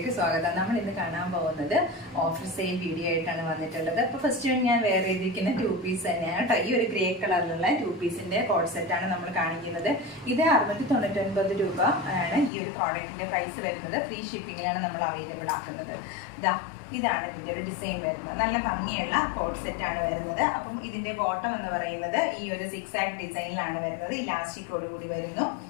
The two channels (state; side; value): drops out; right; at 12.5 s